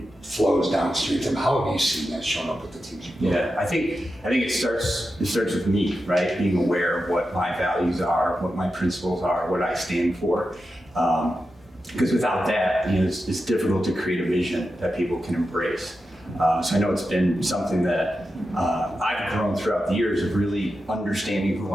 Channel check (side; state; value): both; normal; correlation 0.90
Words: flows downstream to them, how have you seen that shown up with the teams? Yeah, I think it starts with me, right? Being aware of what my values are, what my principles are, what I stand for. Because without that, it's difficult to create a vision that people can embrace. So I know it's been something that I've grown throughout the years of really understanding who